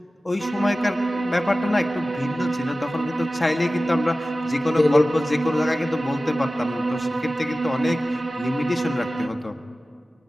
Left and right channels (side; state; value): both; normal; correlation 0.96